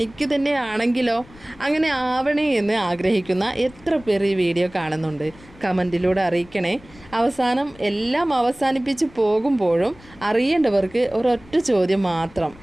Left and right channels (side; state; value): left; noise; rumble, 23 dB below the sound